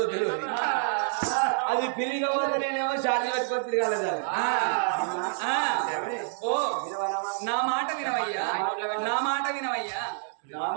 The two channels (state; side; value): silent; left; digital silence